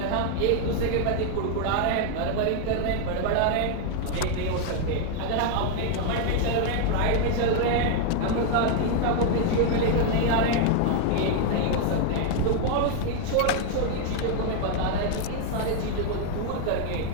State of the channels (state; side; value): different; both; correlation 0.00